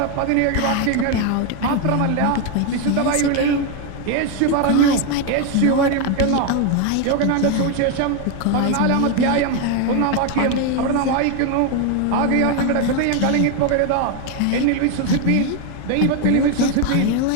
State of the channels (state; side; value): different; both; correlation 0.01